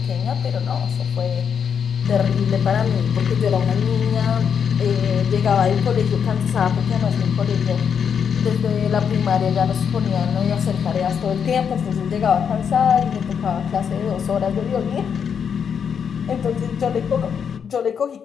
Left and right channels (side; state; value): right; quieter; 7.3 dB